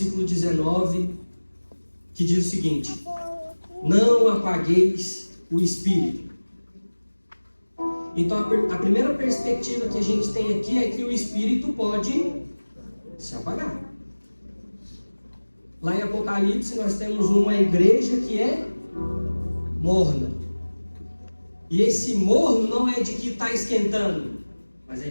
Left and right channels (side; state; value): both; inverted; correlation -1.00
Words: 19, que diz o seguinte: não apagueis o Espírito. Então a primeira perspectiva que a gente tem aqui é que o Espírito pode se apagar. Lá em Apocalipse nós temos uma igreja que é morna. E esse morno não é de que está esquentando, mas é